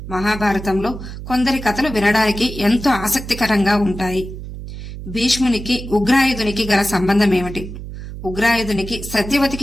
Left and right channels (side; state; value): right; noise; hum, 10 dB below the sound